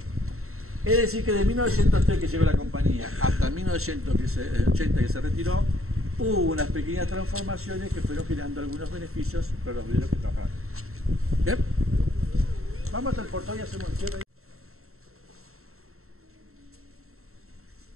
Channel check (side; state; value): left; late; 0.63 ms